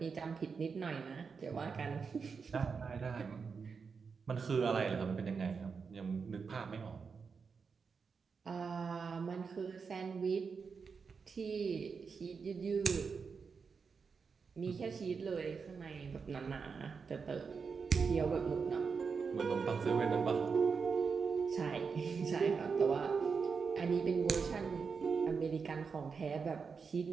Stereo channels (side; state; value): left; quieter; 5.4 dB